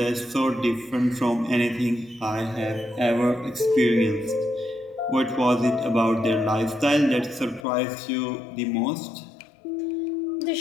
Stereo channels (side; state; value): right; drops out; at 7.7 s